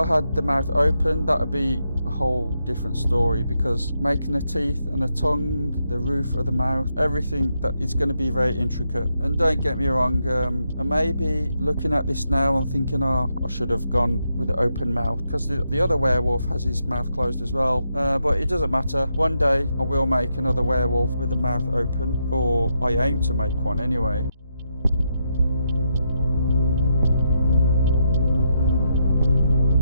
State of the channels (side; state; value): both; inverted; correlation -0.82